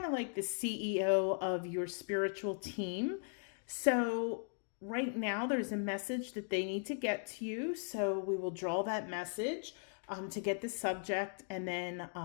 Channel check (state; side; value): silent; right; 52 dB below the other